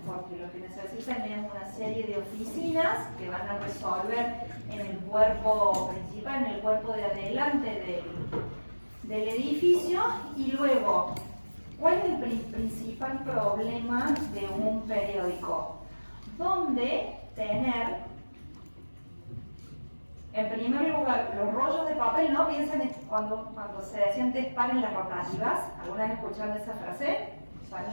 porque lo que necesitan es una serie de oficinas que van a resolver en el cuerpo principal, en el cuerpo de adelante del edificio, y luego, ¿cuál es el principal problema de un periódico? ¿Dónde tener, en primer lugar, los rollos de papel? No piensen cuando se decía antes paren las rotativas. ¿Alguna vez escucharon esa frase? Paren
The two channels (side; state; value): both; inverted; correlation -1.00